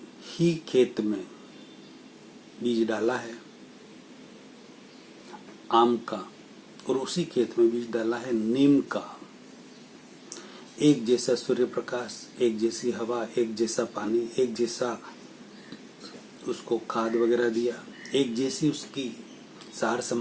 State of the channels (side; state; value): both; identical; correlation 1.00